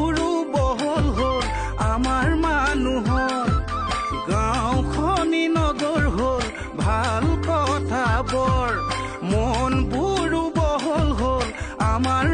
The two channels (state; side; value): identical; both; correlation 1.00